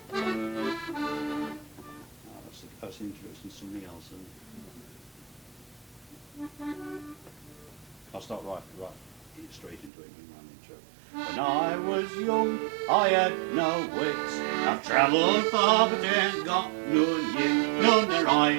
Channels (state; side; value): drops out; left; at 9.9 s